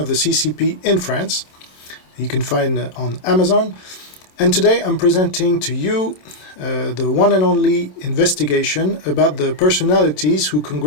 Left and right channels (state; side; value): late; right; 27 ms